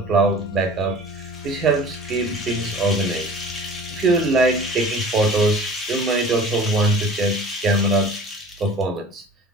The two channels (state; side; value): normal; both; correlation 0.42